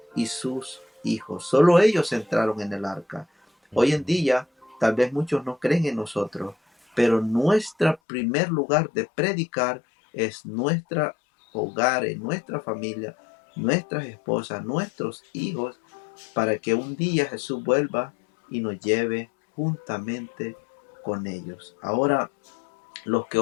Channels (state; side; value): drops out; right; at 8.0 s